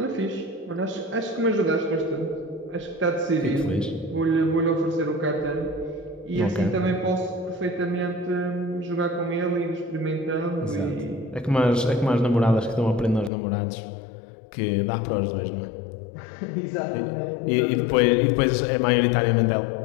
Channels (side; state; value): right; drops out; at 13.3 s